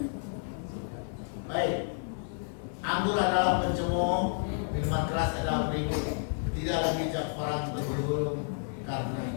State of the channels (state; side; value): silent; right; digital silence